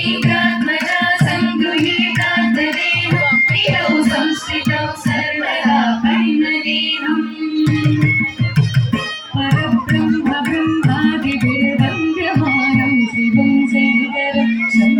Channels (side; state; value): both; identical; correlation 1.00